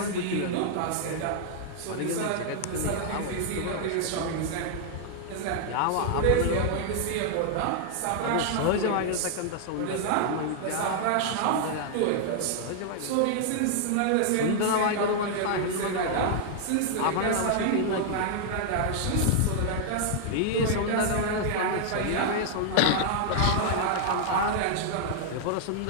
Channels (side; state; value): both; different; correlation -0.01